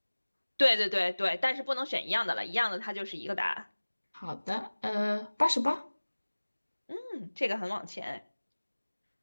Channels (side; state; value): both; inverted; correlation -1.00